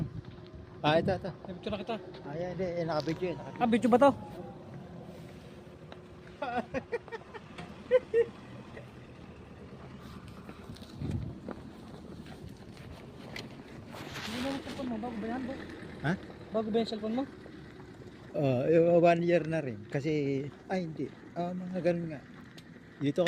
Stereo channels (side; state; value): both; identical; correlation 1.00